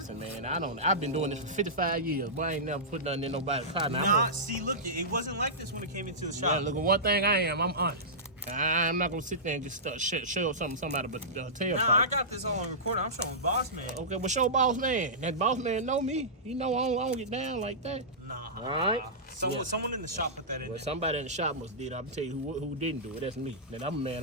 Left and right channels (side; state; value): both; normal; correlation -0.16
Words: man, I've been doing this for 55 years, but I ain't never put nothing in nobody's car. Nah, see, look, it wasn't like this when it came into the Yeah, shop. look at one thing I'm honest. I'm not gonna sit there and just show something out of the tailpipe. Nah, I got this all on recording. I'm showing Boss Man. Okay, well show Boss Man. That Boss Man know me. He know I don't get down like that. Nah. All right. Someone in the shop put that in Well, there. somebody in the shop must did. I'll tell you who didn't do it. That's me. That I'm a man